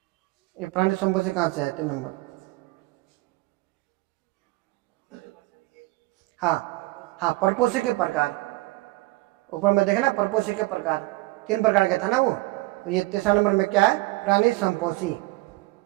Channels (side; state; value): left; quieter; 21.4 dB